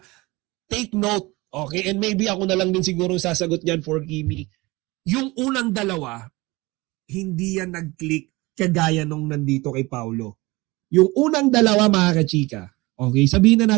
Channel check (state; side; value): quieter; left; 22.4 dB